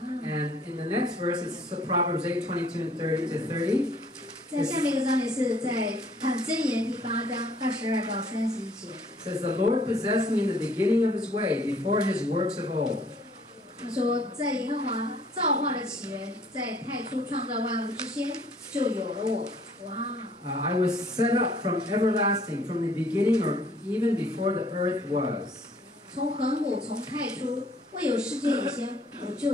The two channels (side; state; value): both; normal; correlation 0.59